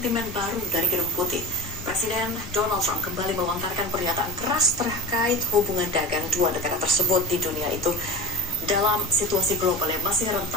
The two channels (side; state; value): both; normal; correlation 0.30